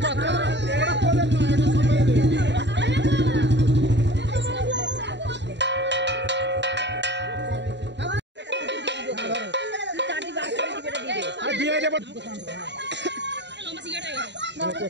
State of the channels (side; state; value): left; late; 0.52 ms